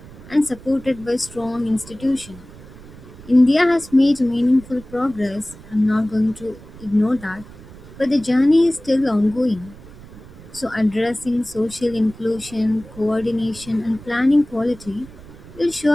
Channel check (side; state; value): right; noise; rumble, 19 dB below the sound